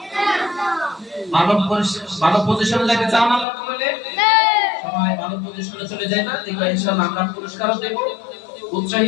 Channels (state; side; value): drops out; right; at 3.5 s